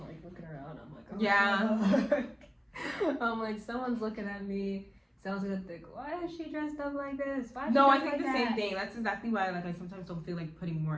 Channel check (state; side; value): identical; both; correlation 1.00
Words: looking around. I'm like, oh, Yeah. I'm like, someone's looking at me. Someone's gonna think, why is she dressed up like this? Why is No, she I dressed think the like same that? thing. That's exactly why like I sometimes don't feel like putting